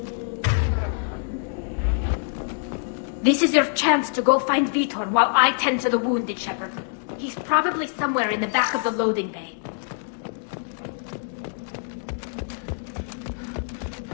This is your chance to go find Vitor while I tend to the wounded, Shepard. He's probably somewhere in the back of the loading bay.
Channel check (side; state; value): right; silent; digital silence